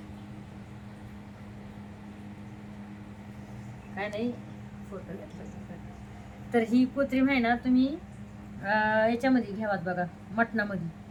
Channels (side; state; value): both; identical; correlation 1.00